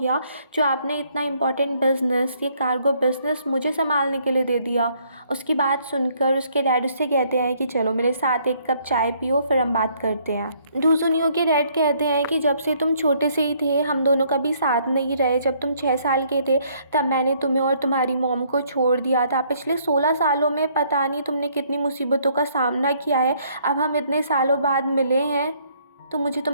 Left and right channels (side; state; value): both; inverted; correlation -0.66